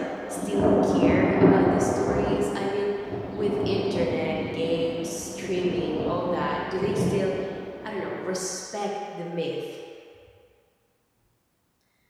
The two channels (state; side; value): identical; both; correlation 1.00